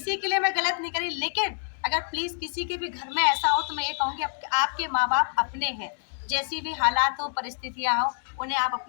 के लिए मैं गलत नहीं करी, लेकिन अगर प्लीज़ किसी के भी घर में ऐसा हो तो मैं ये कहूँगी आपके माँ बाप अपने हैं। जैसी भी हालात हो, परिस्थितियाँ हो, उन्हें आप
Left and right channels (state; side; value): silent; right; digital silence